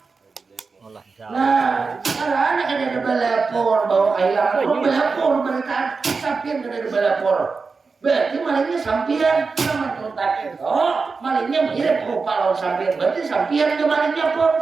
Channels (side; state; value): left; quieter; 4.6 dB